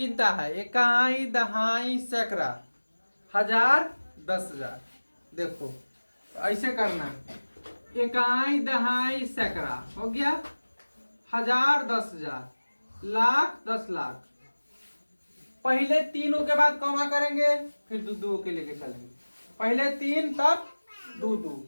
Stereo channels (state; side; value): inverted; both; correlation -1.00